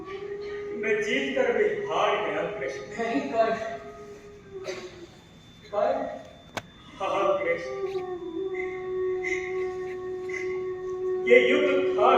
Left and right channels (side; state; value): both; identical; correlation 1.00